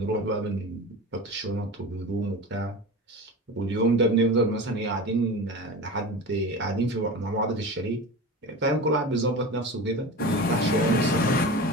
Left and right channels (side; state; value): both; normal; correlation 0.30